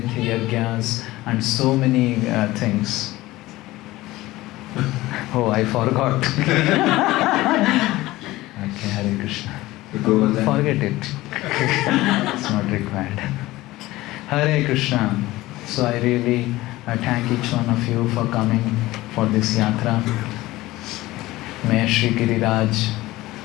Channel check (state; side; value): quieter; right; 18.0 dB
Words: Yajnas and so many things. Oh, I forgot. Okay, Hare Krishna. Govardhan. Forget it. It's not required. Hare Krishna. So I really thank each one of you for coming for this yatra. May Shri Giriraj